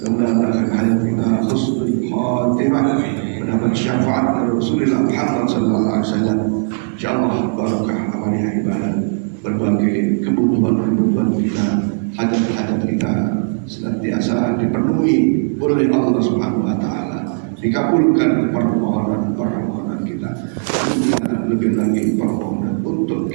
ثم kita husnul khatimah mendapat syafaat dari Rasulullah Muhammad sallallahu alaihi wasallam. Insyaallah barakah amalnya ibadah, berbagai kebutuhan kita, hajat-hajat kita senantiasa dipenuhi oleh Allah Subhanahu wa taala. Dikabulkan permohonan kita. Lebih lagi permohonan untuk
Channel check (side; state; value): left; silent; digital silence